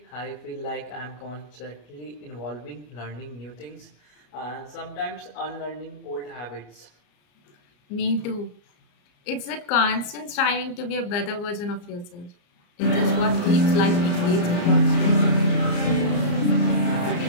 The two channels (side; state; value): right; late; 34 ms